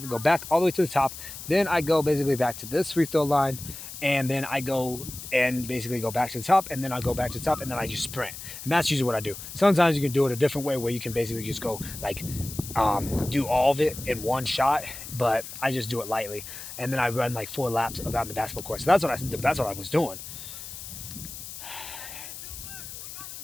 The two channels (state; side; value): noise; left; hiss, 11 dB below the sound